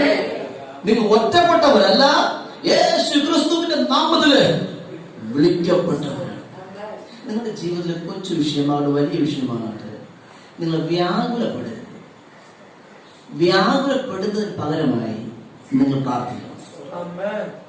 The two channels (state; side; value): identical; both; correlation 1.00